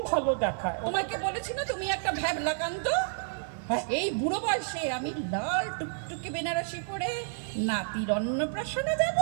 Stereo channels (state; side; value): silent; left; digital silence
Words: ভালো দেখায়। তোমাকে বলেছি না তুমি একটা ভ্যাবলাকান্ত? হ্যাঁ। এই বুড়ো বয়সে আমি লাল টুকটুকে বেনারসি পরে নাতির অন্নপ্রাশনে যাব?